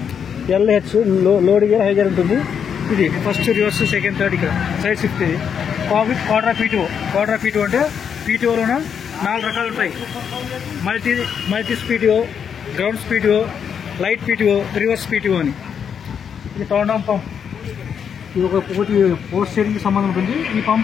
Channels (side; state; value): right; quieter; 7.5 dB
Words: LH load gear, high gear ఉంటుంది. ఇది ఫస్ట్, రివర్స్, సెకండ్, థర్డ్. ఇక్కడ సైడ్ షిఫ్ట్. ఇది quarter of PTO. Quarter of PTO అంటే PTOలోన 4 రకాలు ఉంటాయి. Multi PTO, grounds PTO, light PTO, reverse PTO అని. ఇది కౌండమ్ పంప్. ఇది ఒకటి పోస్ట్ స్టీరింగ్కి సంబంధం ఉంటుంది. ఈ